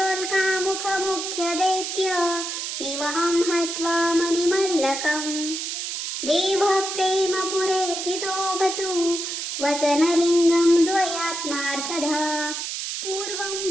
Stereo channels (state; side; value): noise; right; hiss, 4 dB below the sound